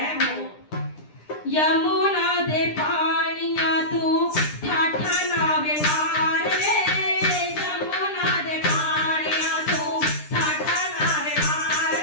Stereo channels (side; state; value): right; late; 9.9 ms